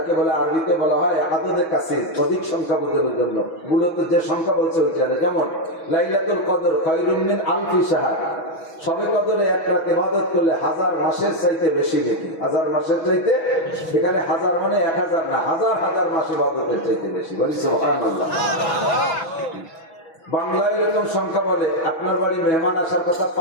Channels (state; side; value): late; right; 6.2 ms